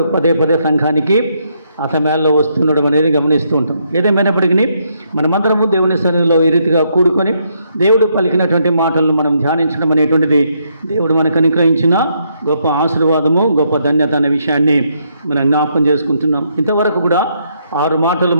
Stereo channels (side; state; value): both; inverted; correlation -0.75